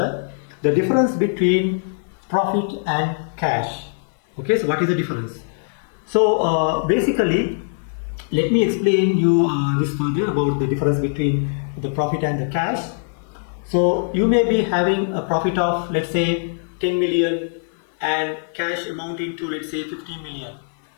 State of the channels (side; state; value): right; silent; 65 dB below the other